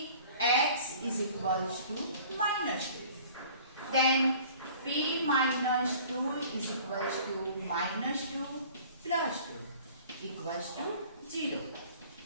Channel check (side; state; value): both; inverted; correlation -0.48